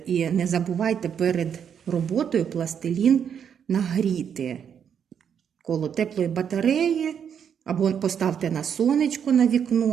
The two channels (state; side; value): quieter; left; 8.0 dB